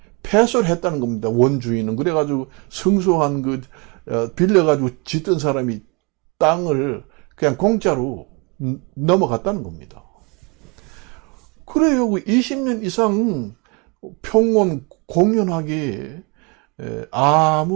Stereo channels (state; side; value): quieter; left; 30.1 dB